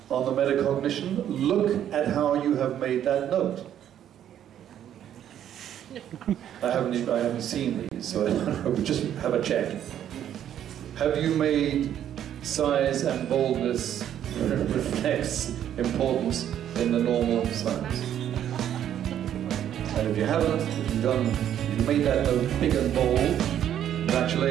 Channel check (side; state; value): left; quieter; 10.4 dB